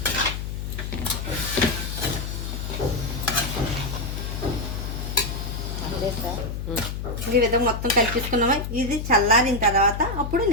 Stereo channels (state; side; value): noise; left; hum, 5 dB below the sound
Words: ఈ విధంగా మొత్తం కలిపేసుకున్నామా. ఇది చల్లారిన తర్వాత అప్పుడు